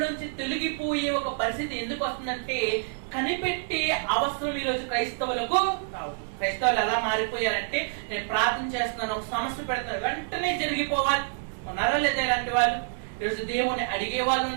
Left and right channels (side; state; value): left; silent; 60 dB below the other